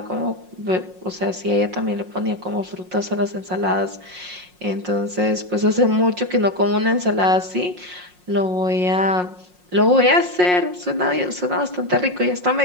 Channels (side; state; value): left; late; 5.6 ms